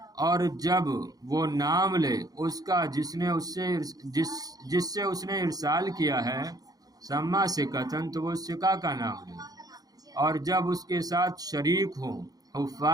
اور جب وہ نام لے اس کا جس سے اس نے ارسال کیا ہے، سما ثقتن، تو وہ ثقہ کا نام لے، اور جب اس کے ساتھ شریک ہوں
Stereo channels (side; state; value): left; late; 0.18 ms